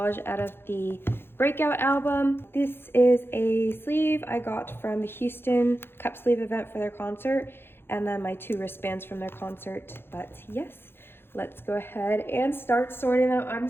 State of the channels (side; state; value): right; late; 0.11 ms